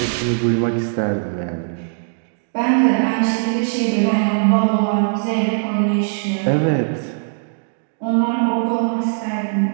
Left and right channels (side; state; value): left; silent; digital silence